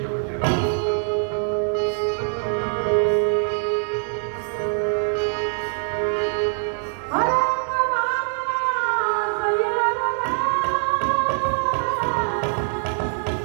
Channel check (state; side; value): silent; left; digital silence